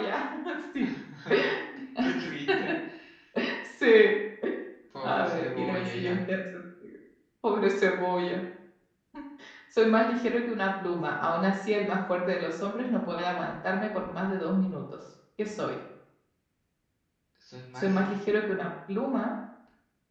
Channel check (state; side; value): identical; both; correlation 1.00